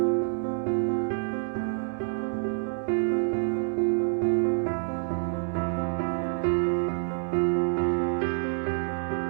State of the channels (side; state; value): left; silent; digital silence